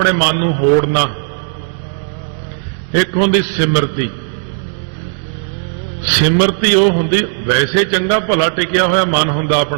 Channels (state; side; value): silent; left; digital silence